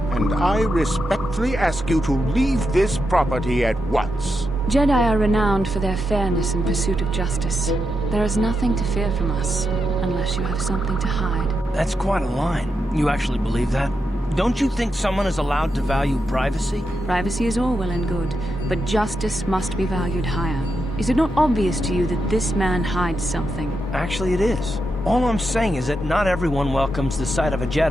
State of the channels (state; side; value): normal; both; correlation 0.86